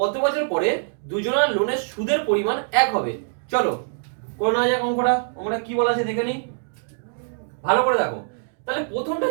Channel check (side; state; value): left; silent; digital silence